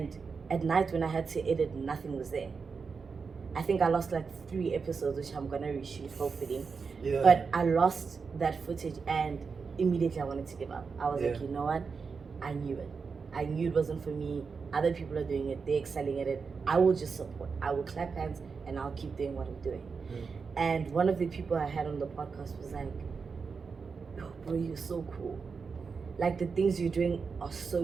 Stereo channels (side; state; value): left; quieter; 5.2 dB